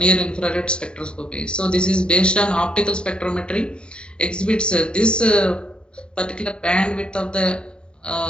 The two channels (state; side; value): late; right; 0.053 ms